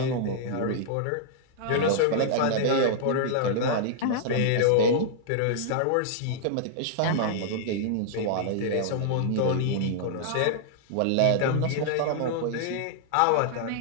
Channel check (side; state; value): both; different; correlation -0.01